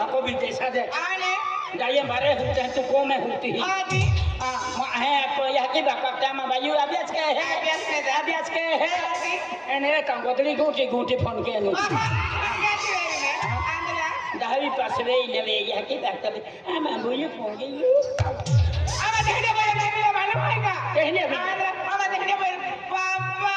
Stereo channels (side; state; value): both; identical; correlation 1.00